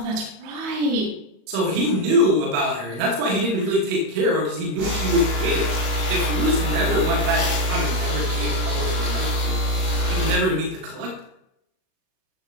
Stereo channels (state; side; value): late; left; 37 ms